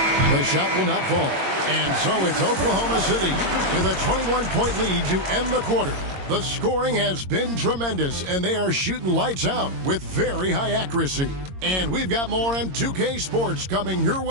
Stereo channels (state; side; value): late; left; 22 ms